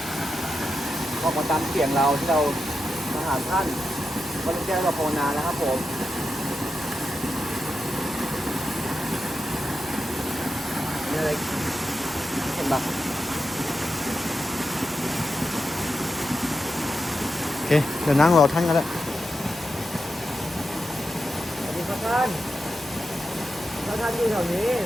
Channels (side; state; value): right; noise; hum, 27 dB below the sound